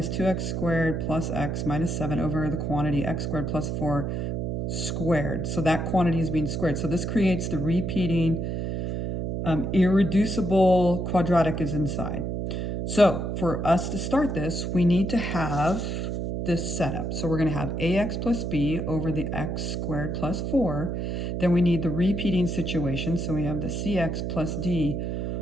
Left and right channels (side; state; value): right; noise; hum, 2 dB below the sound